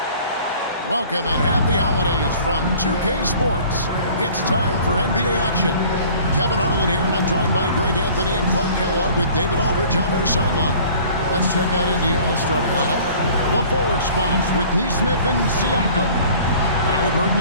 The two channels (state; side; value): inverted; both; correlation -0.49